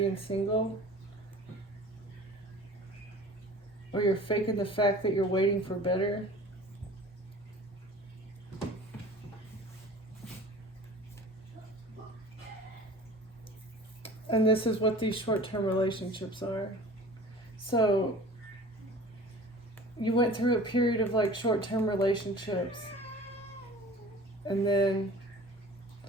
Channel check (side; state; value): both; normal; correlation 0.42